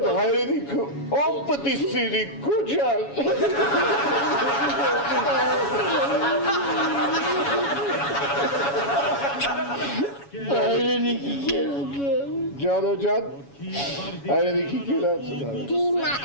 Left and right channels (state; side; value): late; right; 7.2 ms